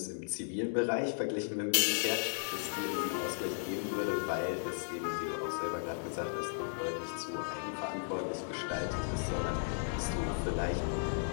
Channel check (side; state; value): right; silent; digital silence